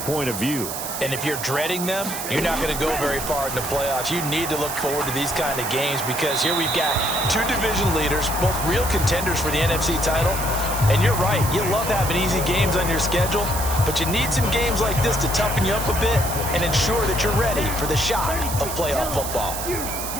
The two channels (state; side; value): noise; right; hiss, 6 dB below the sound